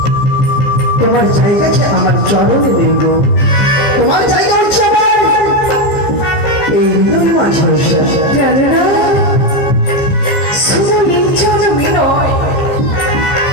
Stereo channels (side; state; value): right; late; 14 ms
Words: তোমার জায়গাটা আমার চরণে নেব, তোমার জায়গা হচ্ছে আমার এই হৃদয় মাঝে। উষা, জানো না, শুধু এই জনমে নয়,